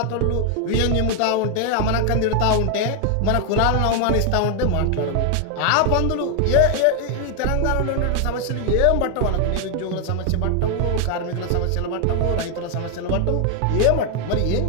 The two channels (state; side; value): different; both; correlation 0.00